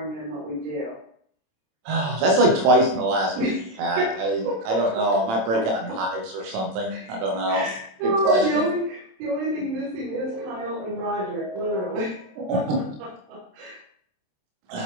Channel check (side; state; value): left; late; 27 ms